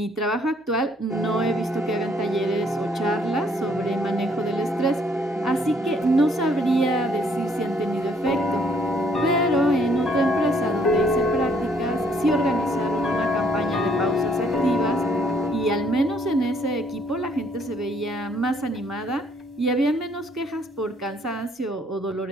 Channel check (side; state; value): both; normal; correlation 0.66